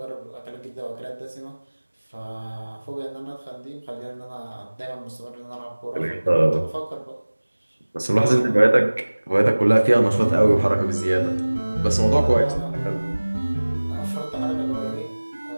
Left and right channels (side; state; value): both; inverted; correlation -1.00